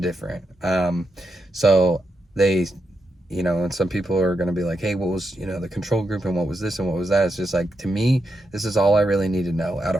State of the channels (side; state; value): both; normal; correlation 0.84